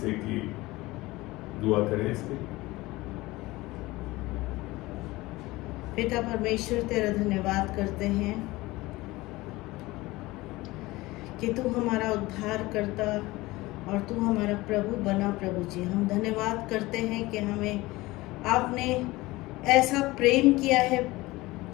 कि दुआ करें इसके लिए। पिता परमेश्वर, तेरा धन्यवाद करते हैं कि तू हमारा उद्धार करता और तू हमारा प्रभु बना। प्रभु जी, हम धन्यवाद करते हैं कि हमें आपने ऐसा प्रेम किया है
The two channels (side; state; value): right; quieter; 20.1 dB